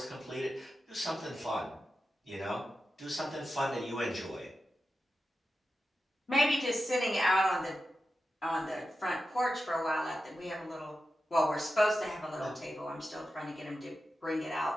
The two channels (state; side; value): normal; both; correlation 0.91